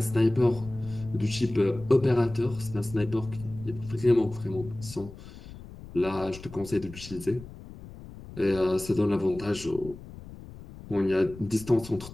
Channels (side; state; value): left; noise; rumble, 15 dB below the sound